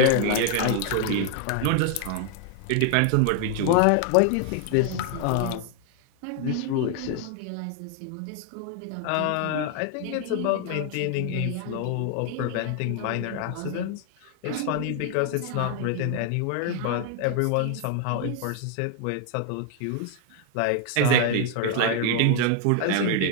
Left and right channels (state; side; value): different; both; correlation 0.00